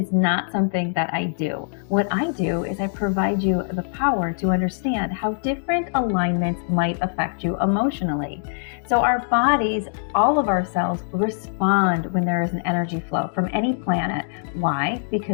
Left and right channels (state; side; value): silent; right; digital silence